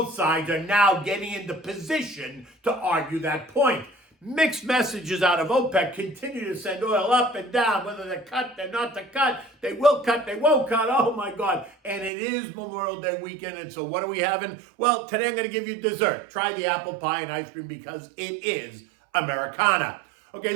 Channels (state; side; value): drops out; left; at 12.1 s